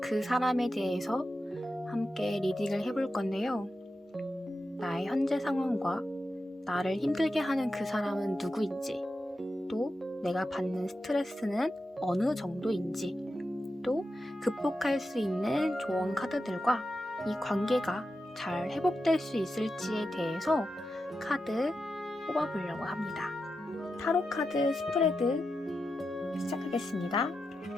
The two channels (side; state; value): both; normal; correlation 0.89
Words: 사람에 대해서 함께 리딩을 해볼 건데요. 나의 현재 상황과 나를 힘들게 하는 그 사람은 누구인지, 또 내가 받는 스트레스는 어느 정도인지, 또 극복할 수 있는 조언 카드들과 이 관계가 잘 회복될 수 있을지에 대해서 카드 뽑아보려고 합니다. 타로 카드 스프레드 시작하겠습니다.